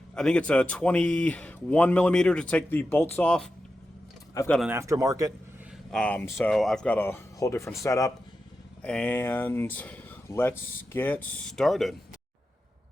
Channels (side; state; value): both; normal; correlation 0.90